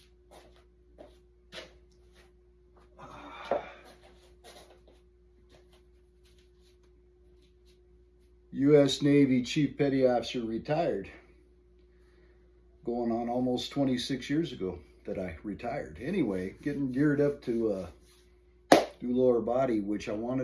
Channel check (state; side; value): identical; both; correlation 1.00